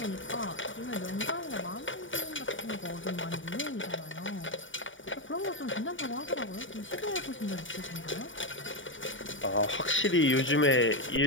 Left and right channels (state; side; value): late; right; 0.56 ms